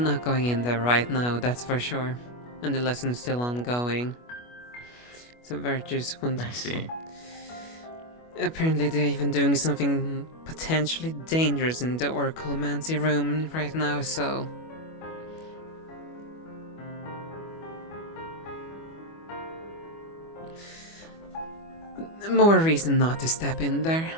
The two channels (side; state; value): right; late; 25 ms